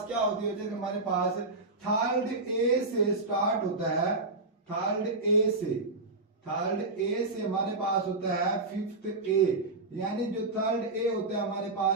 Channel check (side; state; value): left; quieter; 3.2 dB